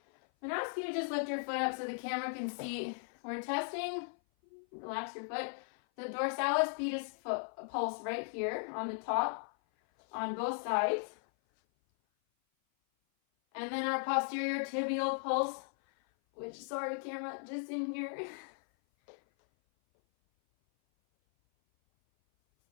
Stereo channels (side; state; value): right; silent; 53 dB below the other